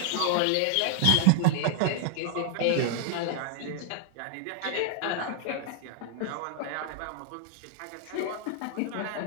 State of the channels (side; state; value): both; different; correlation 0.00